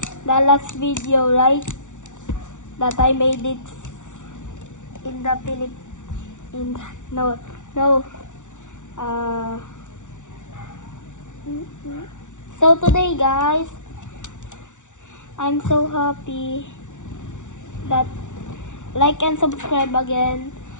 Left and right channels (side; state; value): right; late; 0.86 ms